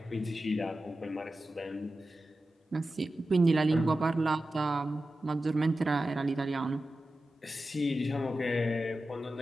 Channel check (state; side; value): normal; both; correlation 0.93